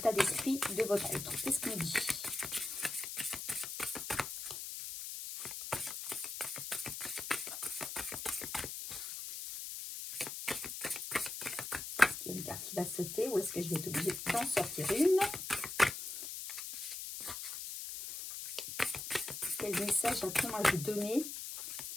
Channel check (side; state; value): left; noise; hiss, 6 dB below the sound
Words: d'esprit de votre autre? Qu'est-ce qu'on dit? va sauter ou est-ce que je vais être obligée d'en sortir une? Quel message a-t-on à vous donner